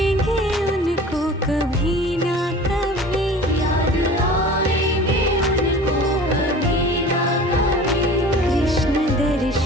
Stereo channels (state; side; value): normal; both; correlation 0.41